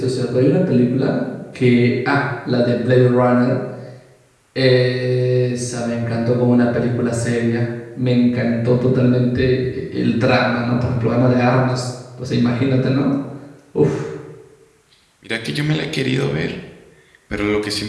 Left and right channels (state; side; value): identical; both; correlation 1.00